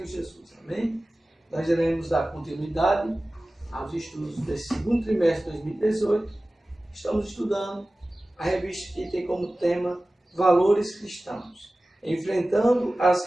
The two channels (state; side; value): normal; both; correlation 0.97